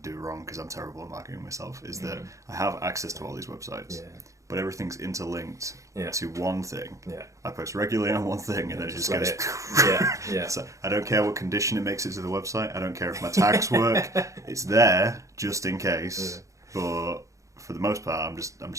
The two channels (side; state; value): left; late; 0.15 ms